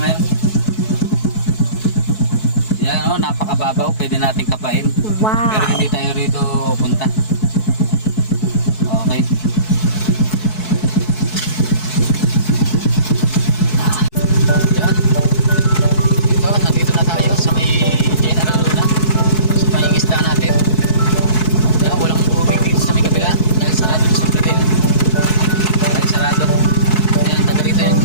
Yan o, napakababaw. Pwede natin kapain. Wow. Pero hindi tayo rito punta. Okay. Yan. Ito, nandito na tayo sa may General Luna. Sa pangingisda natin. Yan, walang tubig dito sa may kabila. Dahil sarado na sa Bradel. Dahil sarado. Yan, taga rito yung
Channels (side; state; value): right; late; 4.6 ms